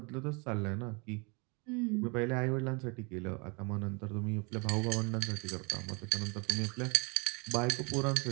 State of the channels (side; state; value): left; quieter; 31.1 dB